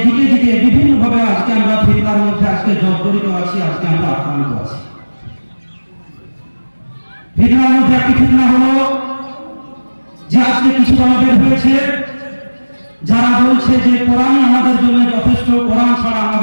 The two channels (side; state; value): both; inverted; correlation -1.00